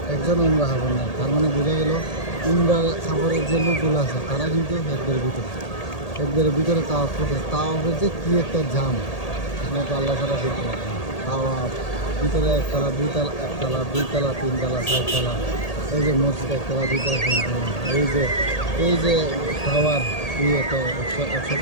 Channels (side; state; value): right; late; 1.8 ms